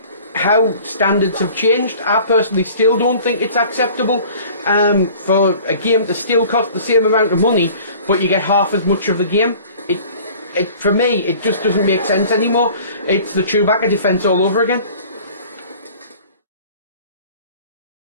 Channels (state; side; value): inverted; both; correlation -0.47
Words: how standards have changed. I personally still don't think it's acceptable for a game to still cost the same amount of money but you get half as much of the game. For me, it just doesn't make sense anymore. It's the Chewbacca defense all over again.